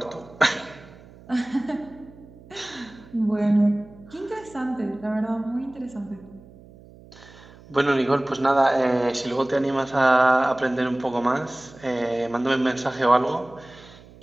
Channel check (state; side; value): noise; right; hum, 22 dB below the sound